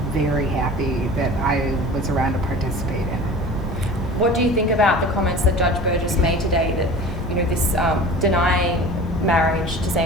very happy that I was around to participate in it. What do you think about the comments that Judge Burgess made today that, this denying marriage to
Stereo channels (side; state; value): both; normal; correlation 0.39